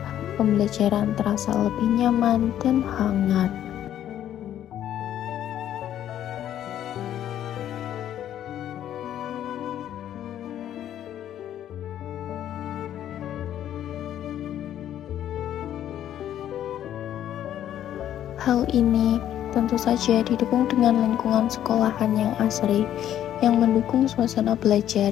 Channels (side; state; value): right; quieter; 11.2 dB